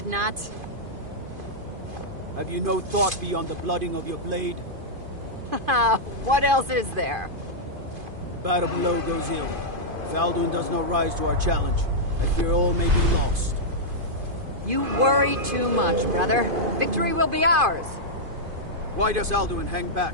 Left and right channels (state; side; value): late; left; 2.5 ms